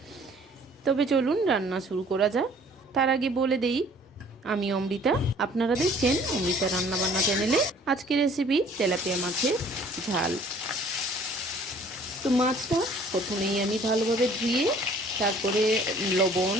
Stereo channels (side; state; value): both; normal; correlation 0.55